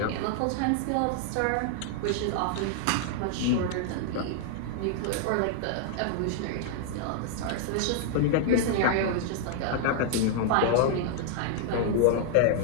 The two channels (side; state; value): both; different; correlation -0.01